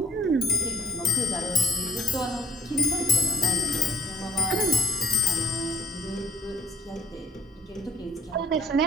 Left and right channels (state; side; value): normal; both; correlation 0.53